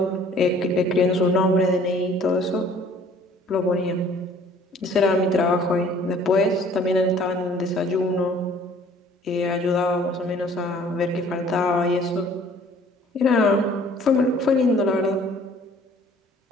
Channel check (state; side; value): normal; both; correlation 0.54